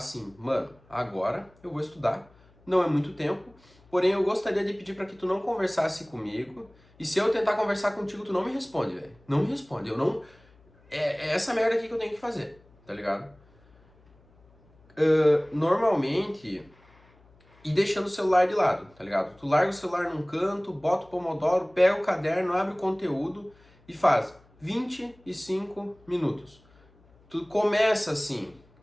mano, agora eu vou estudar. Não é muito tempo, porém eu gostaria de pedir para que tu não conversasse comigo. E se eu tentar conversar contigo, tu não me responde, velho. Não me responde, eu não... É essa merda aqui que eu tenho que fazer, tá ligado? Normalmente, e deixando o celular de lado, tá ligado? Tu larga o celular num canto, bota o Pomodoro, pega o caderno, abre o conteúdo e faz 25 minutos. Tu começa assim,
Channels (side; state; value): left; noise; hum, 30 dB below the sound